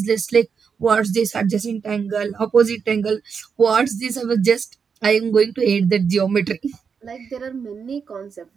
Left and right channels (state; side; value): quieter; left; 6.1 dB